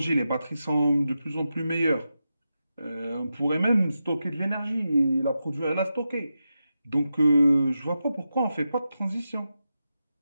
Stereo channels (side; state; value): both; inverted; correlation -0.89